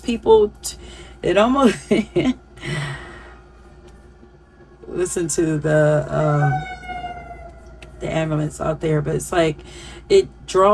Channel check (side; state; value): both; identical; correlation 1.00